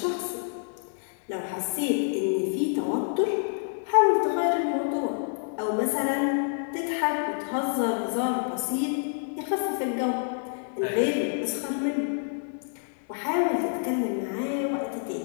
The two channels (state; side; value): silent; right; digital silence